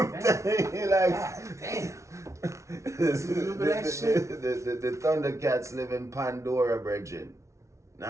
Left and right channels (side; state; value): left; late; 0.14 ms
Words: God telling you, like, damn. Remember that shit? The Thundercats live in Pandora, Bridget.